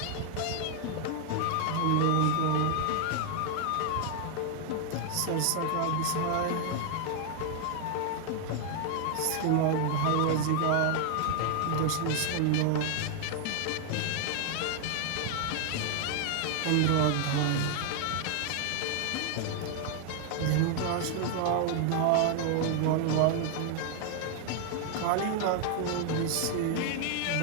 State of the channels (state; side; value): different; both; correlation 0.00